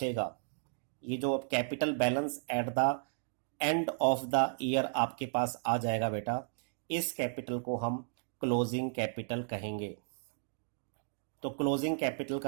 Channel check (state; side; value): silent; left; digital silence